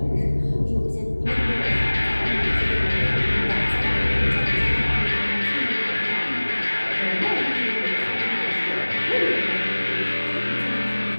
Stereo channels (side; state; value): both; inverted; correlation -1.00